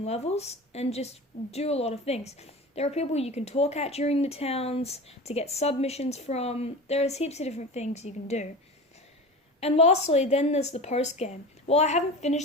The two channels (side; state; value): both; normal; correlation 0.32